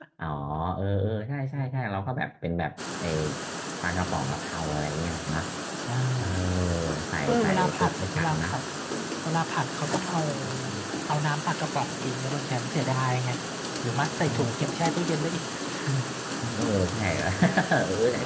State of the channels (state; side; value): identical; both; correlation 1.00